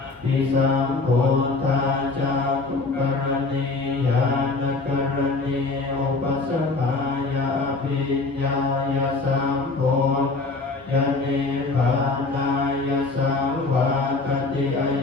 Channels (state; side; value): quieter; right; 3.7 dB